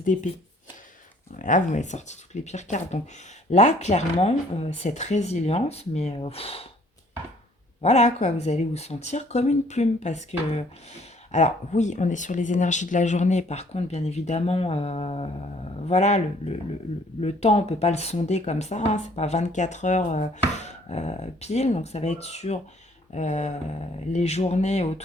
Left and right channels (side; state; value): both; normal; correlation 0.59